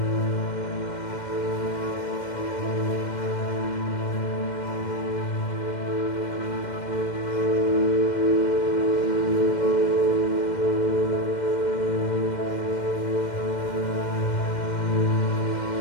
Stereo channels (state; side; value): late; right; 2.1 ms